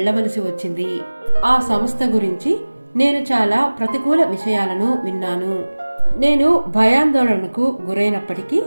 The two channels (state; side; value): inverted; both; correlation -1.00